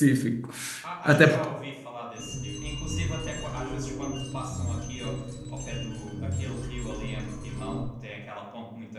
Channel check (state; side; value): identical; both; correlation 1.00